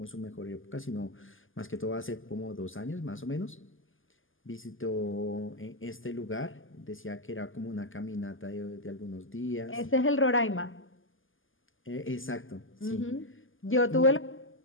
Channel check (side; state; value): right; late; 0.58 ms